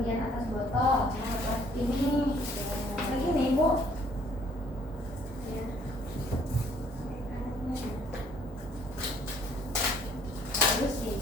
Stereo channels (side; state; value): both; normal; correlation 0.61